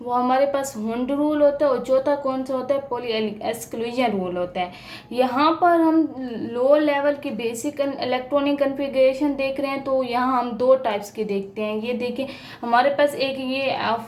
वो हमारे पास हुंड रूल होता है, और चौथा कौन सा होता है, पॉली एक्सक्लूजन रूल होता है। यहाँ पर हम लो लेवल की बेसिक इलेक्ट्रॉनिक कॉन्फ़िगरेशन देख रहे हैं, तो यहाँ हम दो टाइप्स के देखते हैं। ये देखिए हमारे पास एक ये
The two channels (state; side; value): identical; both; correlation 1.00